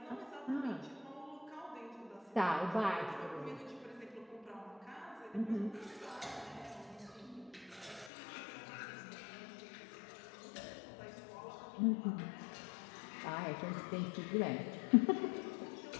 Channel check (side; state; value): right; drops out; at 8.1 s